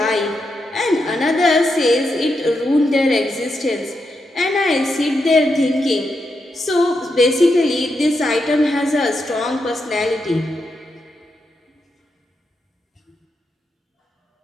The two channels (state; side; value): normal; both; correlation 0.84